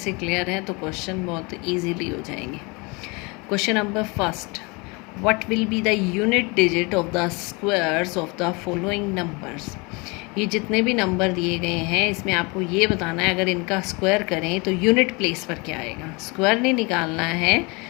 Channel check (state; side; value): quieter; right; 28.2 dB